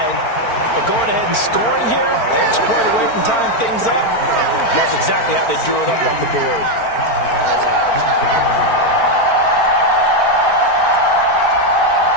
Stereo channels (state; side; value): late; right; 4.4 ms